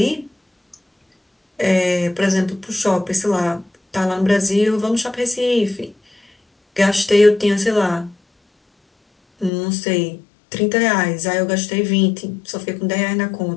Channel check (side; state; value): right; drops out; at 9.5 s